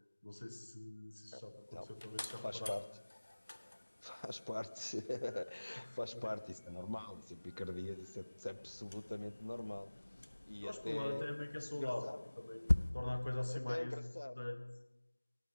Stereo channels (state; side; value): inverted; both; correlation -1.00